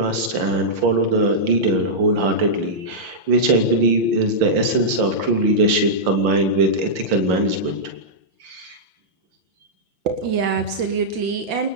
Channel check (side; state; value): left; late; 5.7 ms